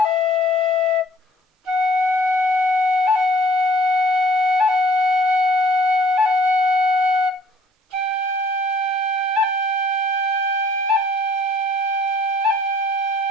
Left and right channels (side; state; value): both; normal; correlation 0.56